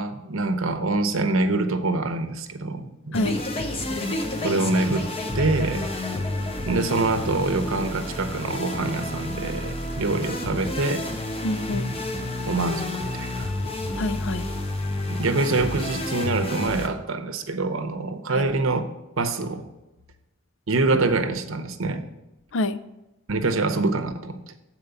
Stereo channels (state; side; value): normal; both; correlation 0.31